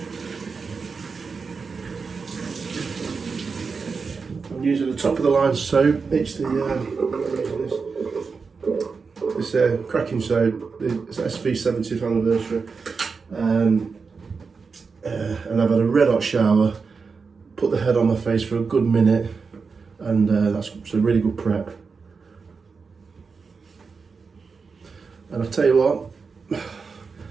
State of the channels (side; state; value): left; quieter; 5.0 dB